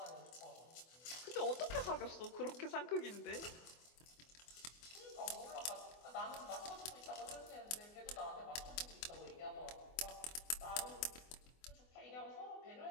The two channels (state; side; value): late; right; 24 ms